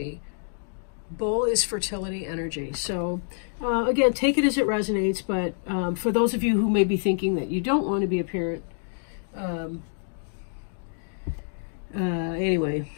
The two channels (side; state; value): right; silent; digital silence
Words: Bowl is fertility energy. So again, take it as it resonates, but for those of you who may be thinking that you don't want to be a parent, anyway,